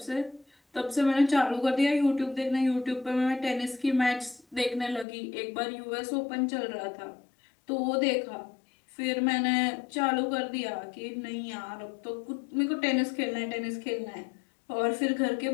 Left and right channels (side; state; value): right; drops out; at 5.1 s